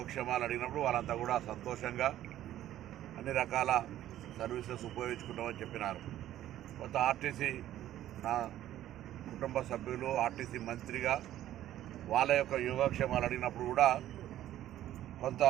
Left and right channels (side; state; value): left; quieter; 12.8 dB